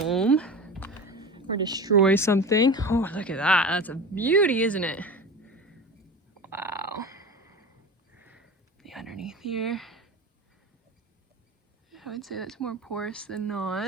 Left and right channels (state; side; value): normal; both; correlation 0.30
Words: or destroy something. Oh, look at that. That's a beauty, isn't it? Wow. The underneath here. I would say that's more porous than